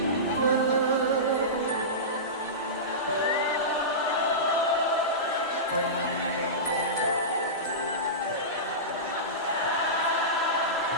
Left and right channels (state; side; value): normal; both; correlation -0.19